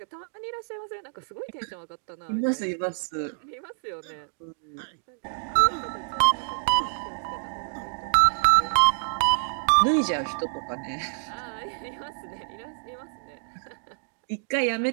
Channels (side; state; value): left; silent; digital silence